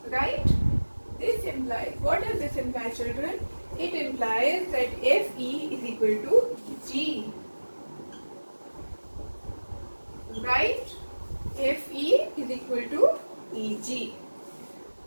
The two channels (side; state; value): both; inverted; correlation -1.00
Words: Right? This implies, what does this imply, children? It implies that FE is equal to G. Right? FE is equal to EG.